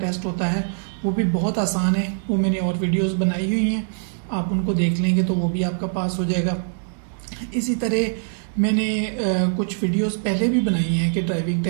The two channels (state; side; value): silent; left; digital silence